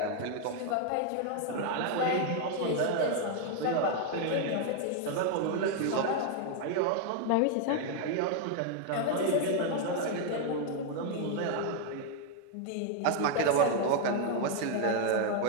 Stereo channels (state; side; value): different; both; correlation 0.00